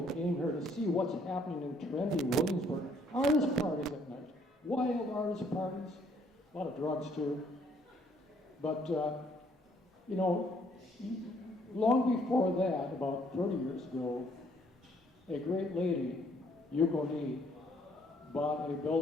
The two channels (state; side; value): normal; both; correlation 0.65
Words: They came here to see what's happening in trendy Williamsburg. Artist parties at night. Wild artist parties, a lot of drugs too. But, long before that, about 30 years ago, a great lady, Yukoni, bought a